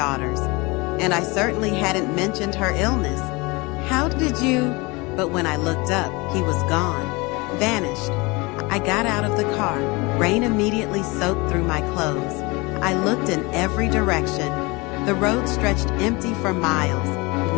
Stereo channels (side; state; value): right; quieter; 25.5 dB